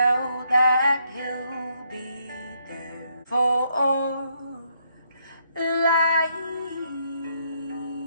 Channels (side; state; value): both; inverted; correlation -0.74